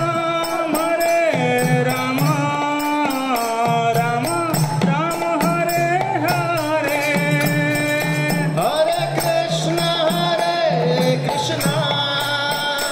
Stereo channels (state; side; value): identical; both; correlation 1.00